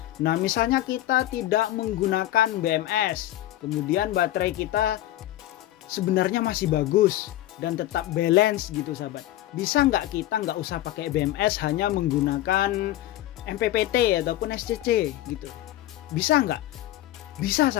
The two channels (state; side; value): quieter; right; 14.3 dB